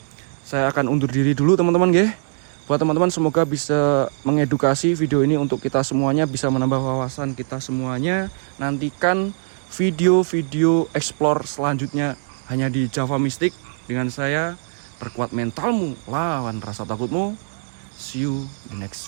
saya akan undur diri dulu teman-teman ya. Buat teman-teman semoga bisa mengedukasi video ini untuk kita semuanya, bisa menambah wawasan kita semuanya. Nantikan video-video explore selanjutnya hanya di Java Mystic dengan saya. Perkuat mentalmu, lawan rasa takutmu. See you the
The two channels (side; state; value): left; silent; digital silence